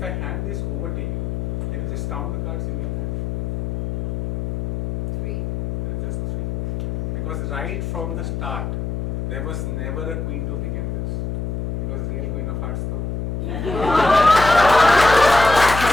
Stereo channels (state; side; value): noise; left; hum, 3 dB below the sound